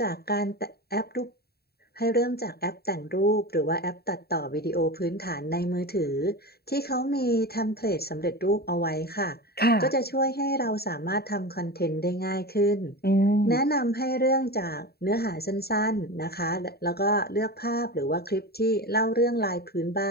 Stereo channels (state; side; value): late; right; 0.46 ms